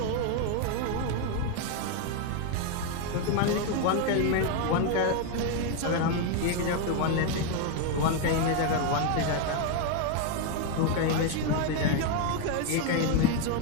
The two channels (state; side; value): different; both; correlation 0.01